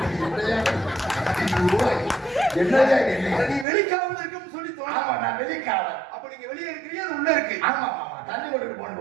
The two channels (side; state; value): left; drops out; at 3.7 s